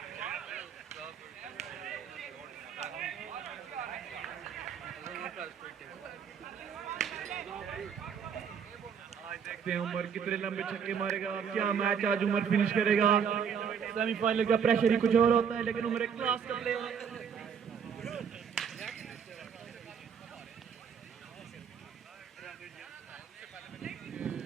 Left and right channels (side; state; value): left; quieter; 7.2 dB